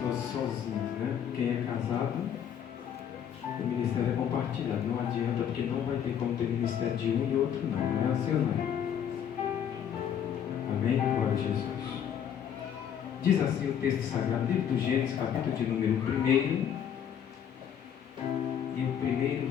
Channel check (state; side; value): quieter; right; 8.9 dB